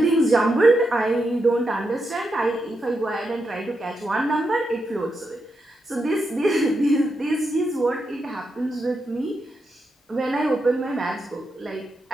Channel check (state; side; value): normal; both; correlation 0.85